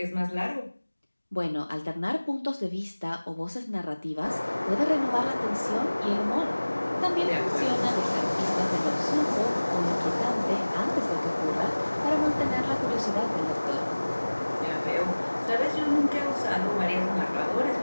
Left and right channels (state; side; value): inverted; both; correlation -1.00